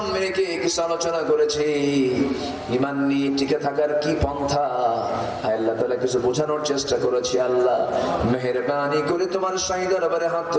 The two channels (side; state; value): both; identical; correlation 1.00